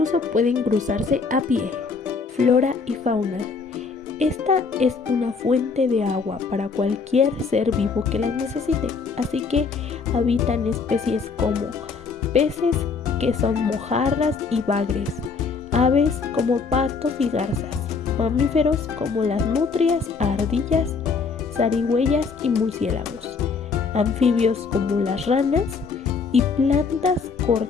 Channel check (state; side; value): quieter; right; 5.0 dB